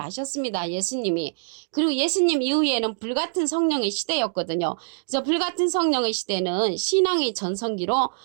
하셨습니다, 예수님이. 그리고 예수님 이후에는 불같은 성령의 시대였거든요. 그래서 불같은 성령의 시대는 신앙의 전성기로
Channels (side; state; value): left; silent; digital silence